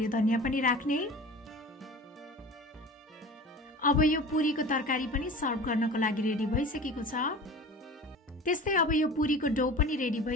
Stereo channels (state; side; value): normal; both; correlation 0.37